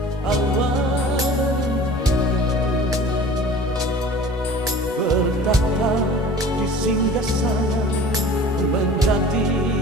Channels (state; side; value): normal; both; correlation 0.43